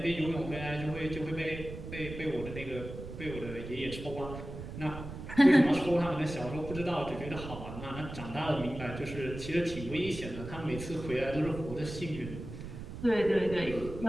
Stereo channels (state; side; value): noise; right; rumble, 10 dB below the sound